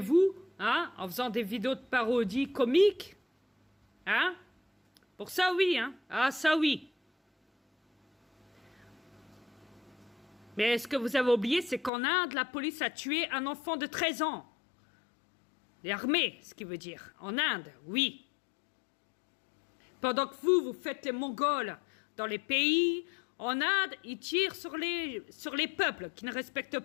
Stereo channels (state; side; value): drops out; right; at 11.9 s